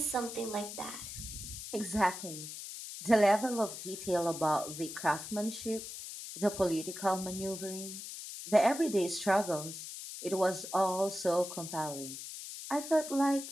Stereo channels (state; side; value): noise; left; hiss, 9 dB below the sound